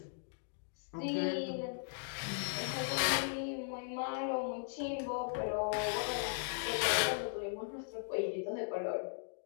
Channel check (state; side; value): silent; right; digital silence